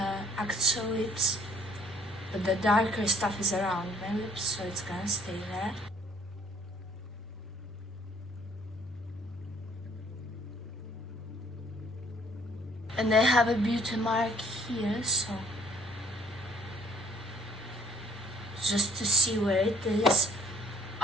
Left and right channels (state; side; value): normal; both; correlation 0.60